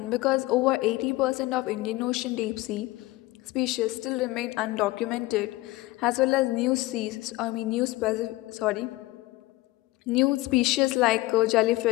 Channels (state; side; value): quieter; right; 19.3 dB